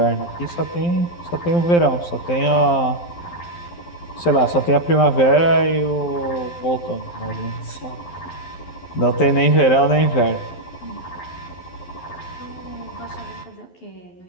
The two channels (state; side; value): late; right; 12 ms